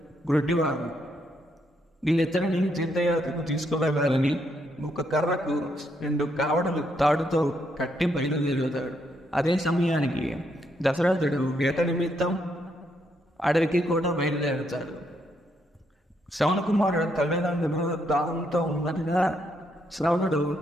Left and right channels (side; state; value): both; normal; correlation 0.76